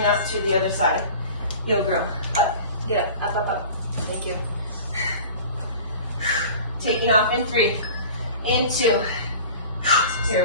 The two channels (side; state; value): both; inverted; correlation -0.41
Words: up to the other side. You'll grow. Up. Get up. Up, up, up. Thank you. Taking off in 3. In 2.